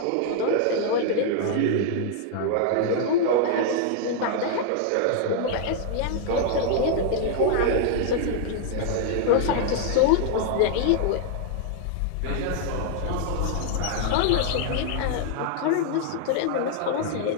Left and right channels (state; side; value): different; both; correlation -0.01